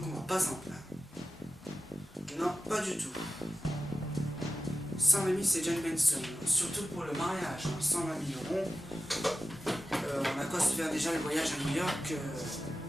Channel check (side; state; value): both; normal; correlation 0.94